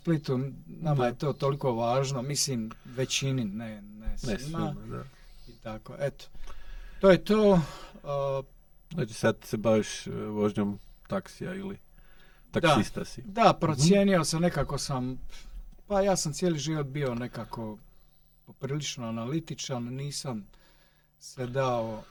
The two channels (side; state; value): both; identical; correlation 1.00